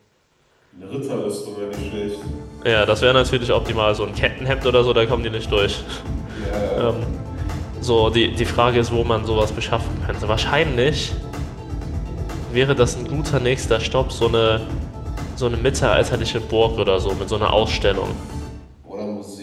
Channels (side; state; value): both; identical; correlation 1.00